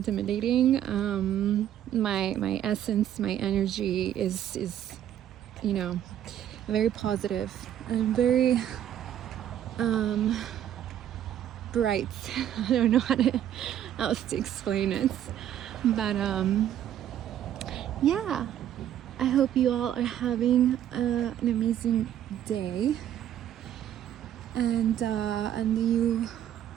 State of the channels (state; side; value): quieter; left; 10.8 dB